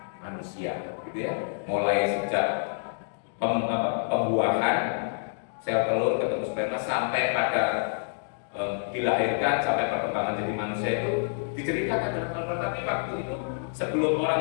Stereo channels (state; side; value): silent; right; digital silence